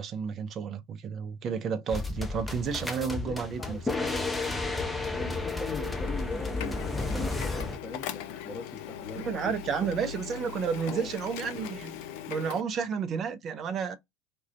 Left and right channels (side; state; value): both; normal; correlation 0.63